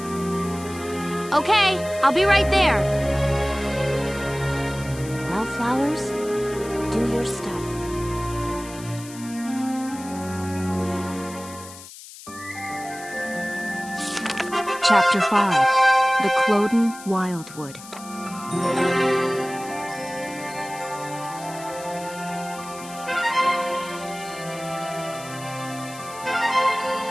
Okay, I'll be right there. Wildflowers, do your stuff. Chapter 5, The Cloden Wildwood.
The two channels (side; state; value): left; noise; hiss, 16 dB below the sound